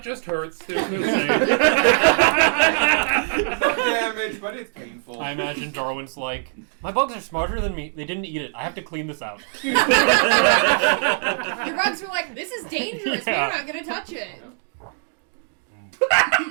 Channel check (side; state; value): left; silent; digital silence